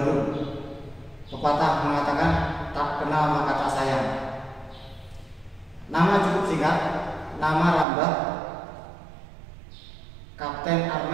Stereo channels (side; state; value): left; drops out; at 7.9 s